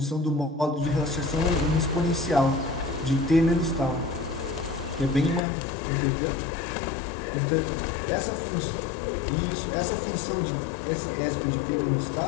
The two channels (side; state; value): right; drops out; at 5.4 s